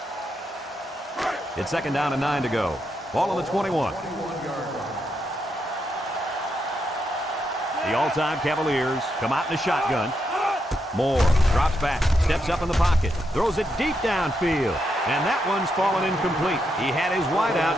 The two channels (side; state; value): both; normal; correlation 0.82